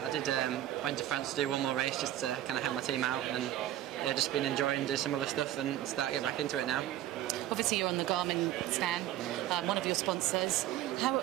went to France to do one more race just to kind of help my team out, and yeah, just been enjoying doing some other stuff and start to get back into it now. Obviously you're on the Garmin stand, one of your sponsors. How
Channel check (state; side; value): quieter; left; 13.2 dB